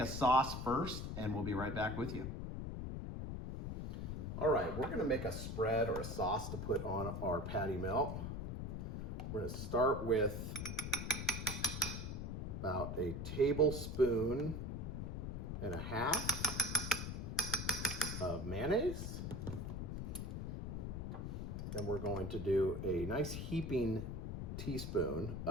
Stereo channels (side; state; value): left; noise; rumble, 4 dB below the sound